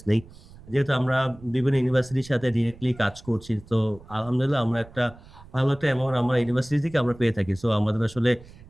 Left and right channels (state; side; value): noise; right; rumble, 21 dB below the sound